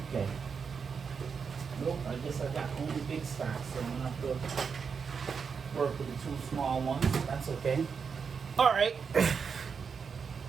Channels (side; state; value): left; quieter; 6.0 dB